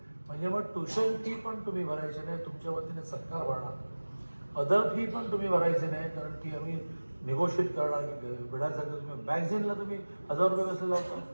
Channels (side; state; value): both; inverted; correlation -1.00